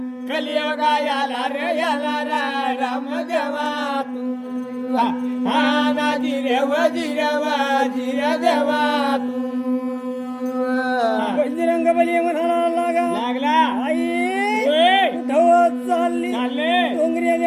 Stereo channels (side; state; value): both; identical; correlation 1.00